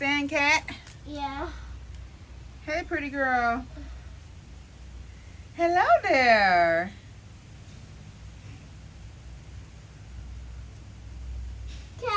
cat? Yeah. Hey, pretty girl. Hello there.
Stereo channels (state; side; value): identical; both; correlation 1.00